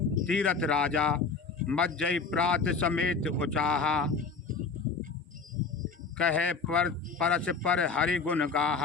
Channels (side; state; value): right; quieter; 4.7 dB